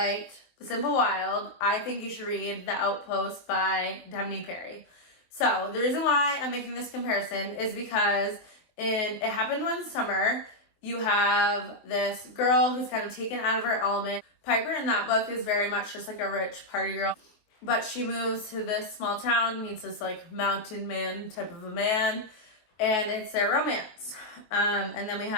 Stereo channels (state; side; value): late; right; 23 ms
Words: The Simple Wild, I think you should read The Outpost by Devney Perry. So the reason why I'm making this comparison is because in It Happened One Summer, you have this girl who's kind of taken out of her element. Piper in that book is very much just like a rich party girl, but she moves to this small town, meets this like mountain man type of a man, and it's their romance. And then we